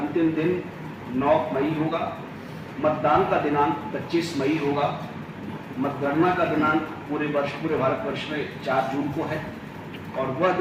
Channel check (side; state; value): both; identical; correlation 1.00